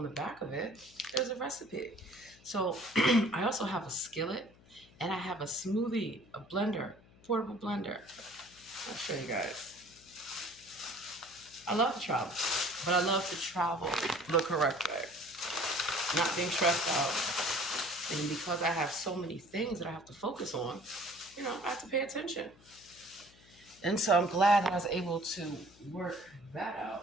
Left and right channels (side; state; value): left; noise; hum, 26 dB below the sound